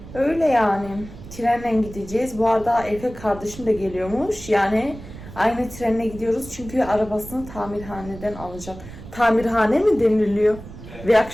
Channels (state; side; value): noise; right; rumble, 15 dB below the sound